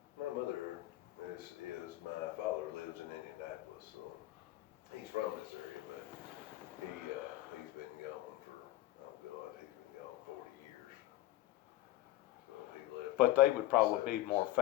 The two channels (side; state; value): right; quieter; 15.8 dB